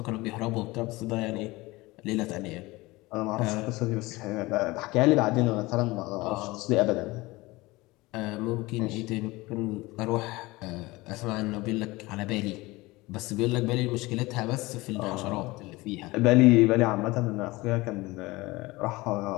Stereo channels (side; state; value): right; quieter; 21.3 dB